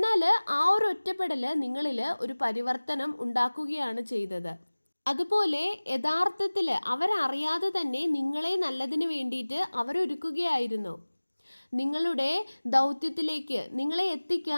ആ ഒരു ഒറ്റപ്പെടൽ നിങ്ങളിൽ ഒരു പരിവർത്തനം ഉണ്ടാക്കുകയാണ് ചെയ്തത്. അതുപോലെ യഥാർത്ഥത്തിൽ അവരറിയാതെ തന്നെ നിങ്ങളെ നല്ലതിന് വേണ്ടിയിട്ട് അവരൊരുക്കുകയായിരുന്നു. നിങ്ങളുടെ ദൗത്യത്തിലേക്ക് നിങ്ങളെ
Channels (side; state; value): both; inverted; correlation -1.00